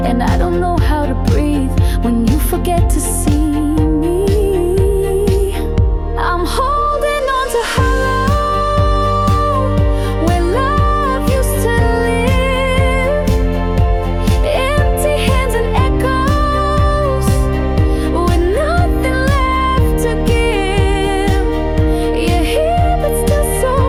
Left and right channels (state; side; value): identical; both; correlation 1.00